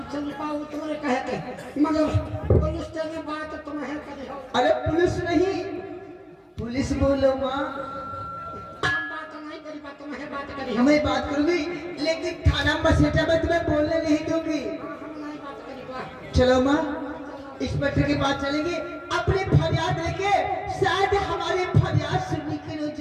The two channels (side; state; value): both; identical; correlation 1.00